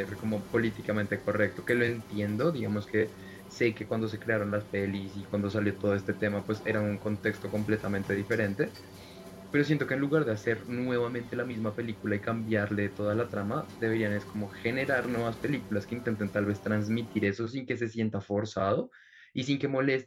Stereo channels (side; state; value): both; identical; correlation 1.00